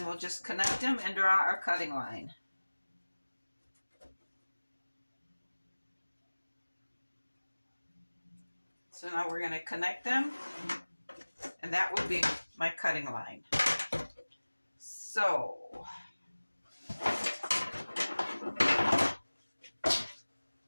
we'll just connect them and draw our cutting line. So now we're going to connect them, and that will be my cutting line. So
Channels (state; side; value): inverted; both; correlation -1.00